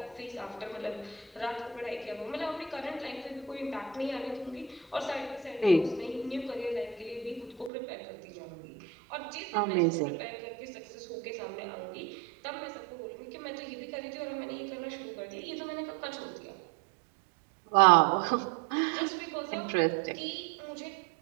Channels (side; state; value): left; drops out; at 7.7 s